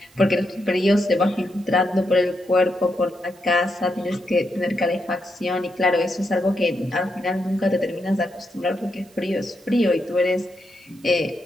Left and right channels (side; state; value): right; noise; hiss, 29 dB below the sound